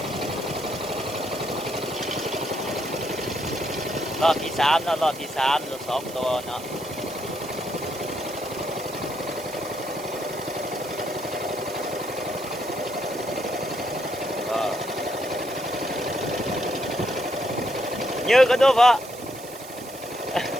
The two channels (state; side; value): noise; right; hiss, 15 dB below the sound